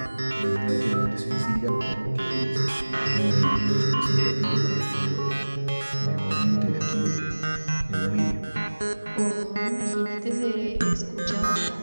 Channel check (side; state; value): both; inverted; correlation -1.00